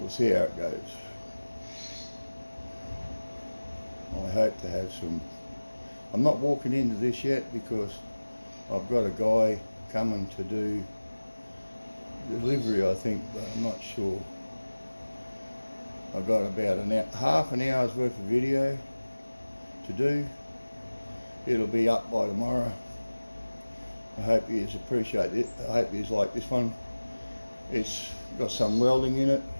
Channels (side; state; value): both; inverted; correlation -1.00